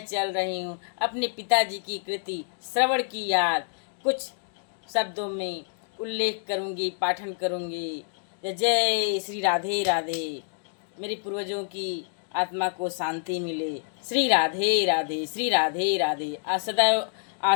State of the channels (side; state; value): right; silent; digital silence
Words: चल रही हूँ अपने पिताजी की कृति श्रवण की याद कुछ शब्दों में उल्लेख करूँगी, पाठन करूँगी। जय जय श्री राधे राधे। मेरे पूर्वजों की आत्मा को शांति मिले। श्री राधे राधे, श्री राधे राधे। सदैव